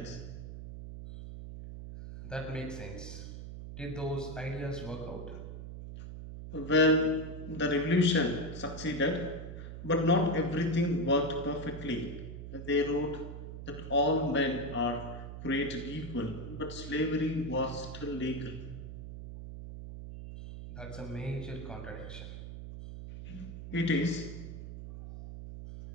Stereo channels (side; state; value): right; noise; hum, 9 dB below the sound